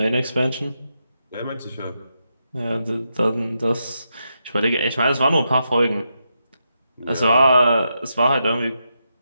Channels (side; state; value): both; inverted; correlation -0.85